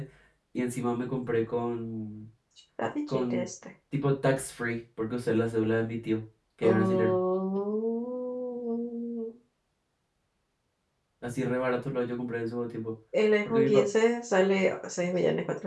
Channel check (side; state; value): both; identical; correlation 1.00